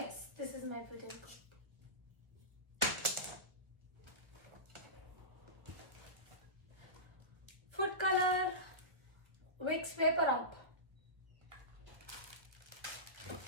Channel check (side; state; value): left; late; 1.1 ms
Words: this is my wooden comb. Food color, Vicks Vapor Up.